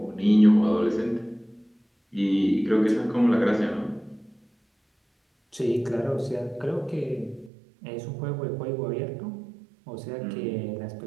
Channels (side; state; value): left; drops out; at 7.5 s